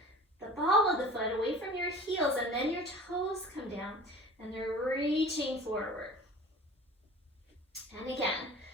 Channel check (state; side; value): normal; both; correlation 0.41